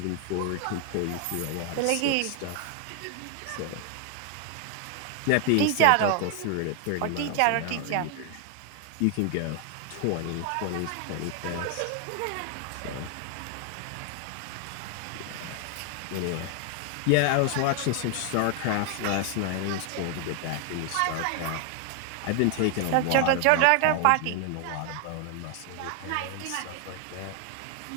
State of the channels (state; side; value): different; both; correlation 0.00